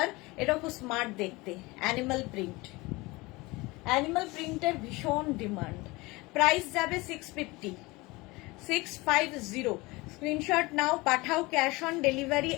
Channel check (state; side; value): quieter; right; 22.9 dB